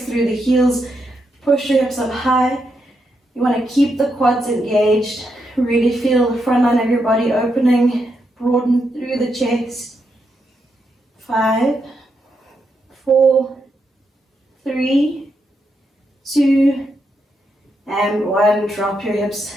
through the heels. Push your hips up high. You want to keep the quads engaged. Really feel the front line of your body opening. Broaden through the chest. 5, 4, 3, 2, and 1. Drop your hips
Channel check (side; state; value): both; normal; correlation 0.82